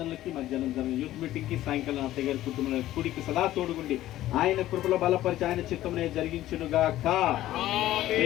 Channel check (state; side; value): quieter; right; 14.4 dB